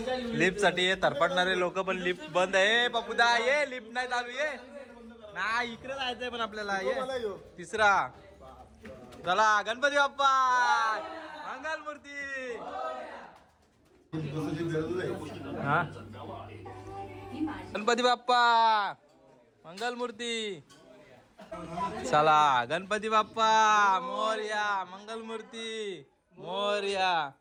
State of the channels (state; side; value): identical; both; correlation 1.00